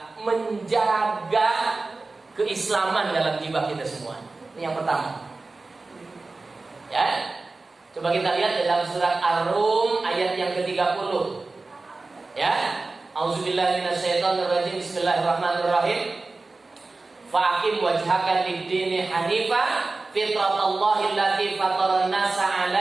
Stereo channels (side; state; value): left; quieter; 3.5 dB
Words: menjaga keislaman dalam jiwa kita semua. Ini yang pertama. Ya. Coba kita lihat dalam surat Ar-Rum ayat yang ke-30. Ya. Auzubillahi minasyaitonirrajim. Bismillahirrahmanirrahim. Fa'aqim wajhaka lid-dini hanifa fitratallahi allati fataran nasa